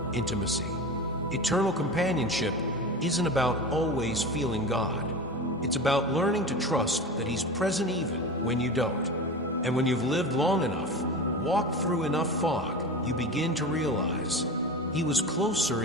intimacy. Eternal companionship isn't about always feeling God. It's about learning to trust that He's present even when you don't. And when you've lived long enough, walked through enough fog, you begin to realize He was closer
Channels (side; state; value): both; normal; correlation 0.29